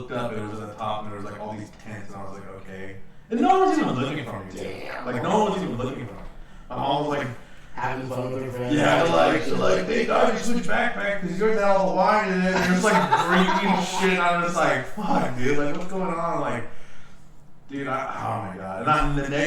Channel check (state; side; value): identical; both; correlation 1.00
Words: up, and it was at the top, and there was like all these tents, and I was like, okay. And no one was even looking for me, dude. Like no one was even looking for me. My mom was like having fun with her friends. Yeah, they're like, hey dog, you switch backpack because yours had all the wine in it. And it's like drinking shit. And I'm just like, fuck, dude, like what's going on? Like, dude, oh my god. And the